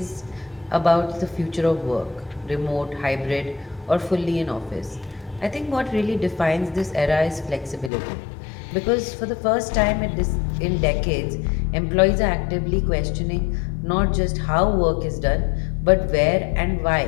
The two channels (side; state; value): right; drops out; at 7.9 s